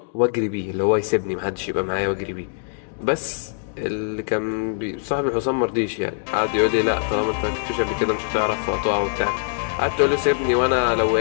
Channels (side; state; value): right; silent; digital silence